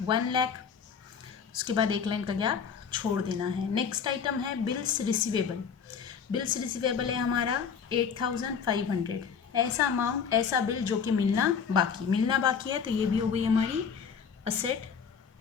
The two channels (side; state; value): right; quieter; 6.7 dB